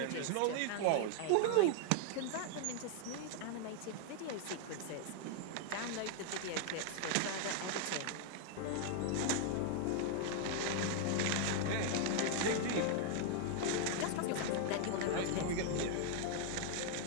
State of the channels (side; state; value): both; different; correlation 0.00